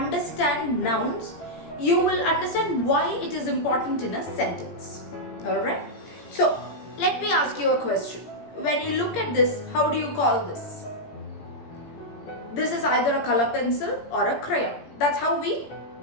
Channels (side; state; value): right; late; 17 ms